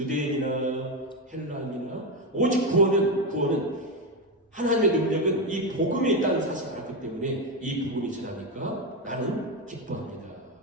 헬라인이나 오직 구원은 하나님의 능력은 이 복음에 있다는 사실을 알았기 때문에 이 복음이 지나니까 나는 기뻐합니다.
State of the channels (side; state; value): both; normal; correlation 0.11